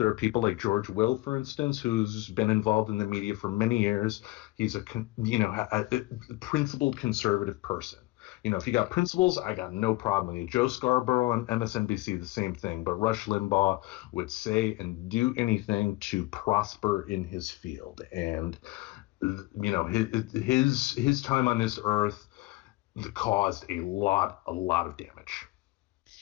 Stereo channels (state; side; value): quieter; right; 19.9 dB